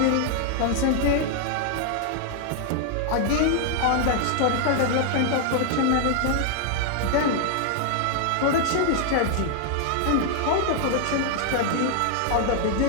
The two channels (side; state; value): both; different; correlation 0.00